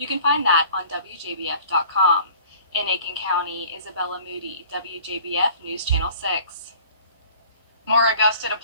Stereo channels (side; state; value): both; inverted; correlation -0.48